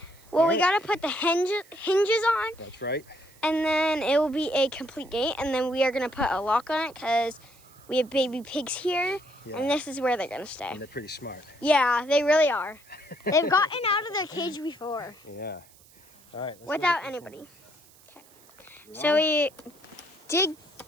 Well, we gotta put the hinges on. That's right. And then it will be a complete gate. And then we are gonna put a lock on it because we have baby pigs here. Yeah. And this is where they're gonna stay. And they're pretty smart. Yeah, they really are. They've gotten out of their cage before. Yeah. All right. Without anybody. Okay. So we did.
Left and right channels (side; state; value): right; noise; hiss, 26 dB below the sound